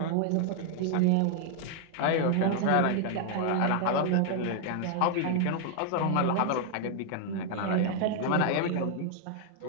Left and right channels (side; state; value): both; different; correlation 0.00